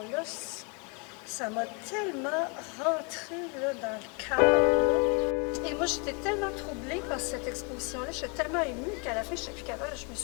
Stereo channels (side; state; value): right; quieter; 33.6 dB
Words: Ça m'a tellement rentré là, dans le cœur. Et moi, j'étais tellement troublée par cette exposition-là, j'étais tellement émue qu'à la fin, je n'étais plus capable, je me